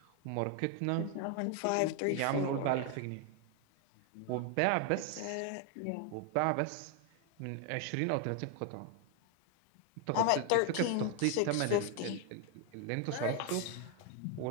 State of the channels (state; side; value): different; both; correlation 0.01